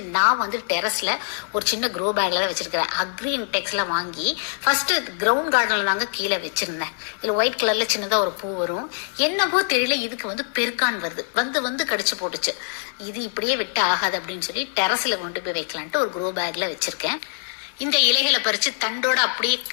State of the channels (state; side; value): silent; right; 57 dB below the other